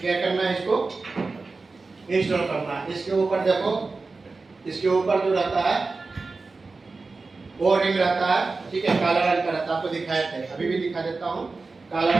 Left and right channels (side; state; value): left; quieter; 3.9 dB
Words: क्या करना है, इसको इंस्टॉल करना है। इसके ऊपर देखो, इसके ऊपर जो रहता है वो रिंग रहता है, ठीक है, काला रंग का रहता है, आपको दिखाए थे, अभी भी दिखा देता हूँ। काला